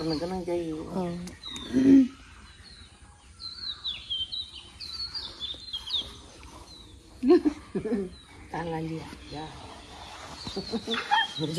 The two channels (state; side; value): identical; both; correlation 1.00